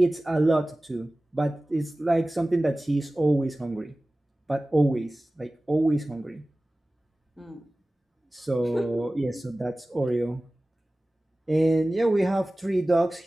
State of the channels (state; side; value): normal; both; correlation 0.97